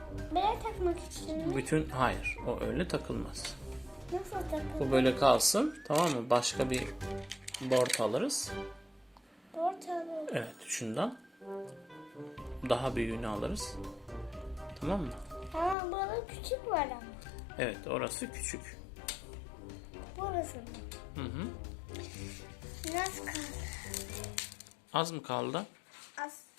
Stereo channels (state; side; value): drops out; right; at 15.8 s